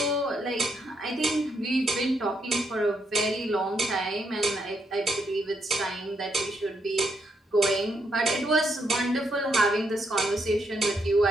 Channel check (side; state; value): both; normal; correlation 0.77